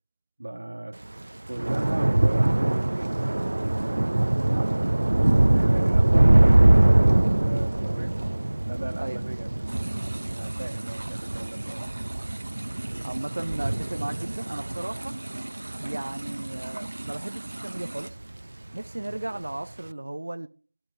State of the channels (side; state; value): both; inverted; correlation -1.00